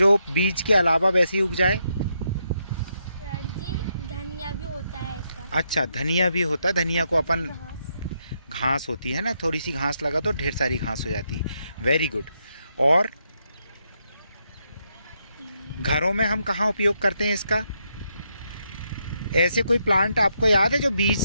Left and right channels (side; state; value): both; inverted; correlation -0.80